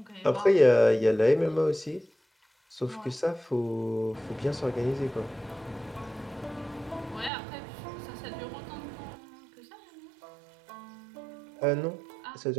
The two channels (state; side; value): drops out; left; at 7.3 s